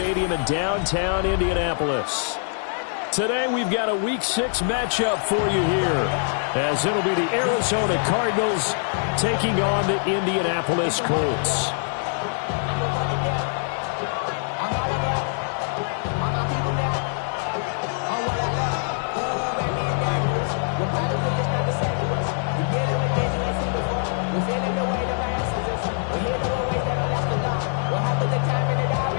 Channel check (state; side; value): silent; right; digital silence